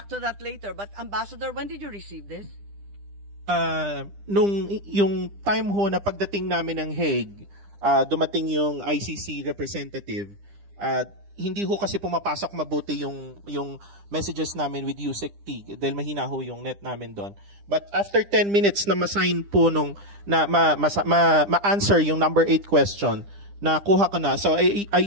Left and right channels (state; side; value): late; left; 9.9 ms